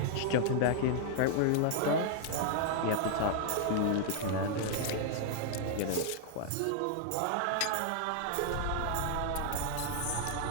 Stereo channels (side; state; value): both; different; correlation -0.01